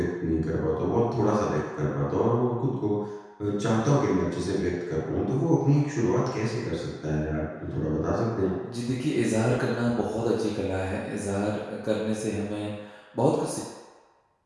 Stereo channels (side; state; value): both; identical; correlation 1.00